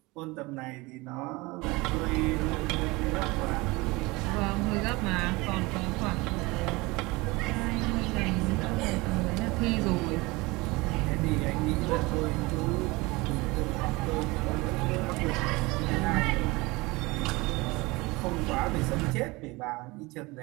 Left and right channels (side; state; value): left; quieter; 23.2 dB